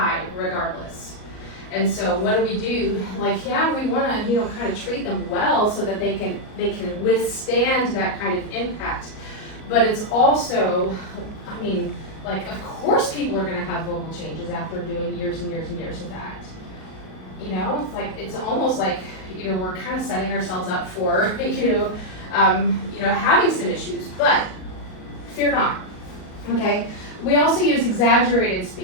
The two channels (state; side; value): late; right; 38 ms